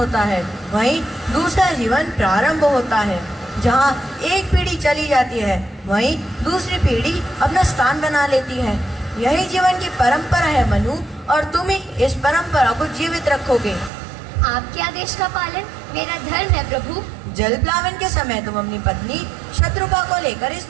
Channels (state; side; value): drops out; left; at 13.9 s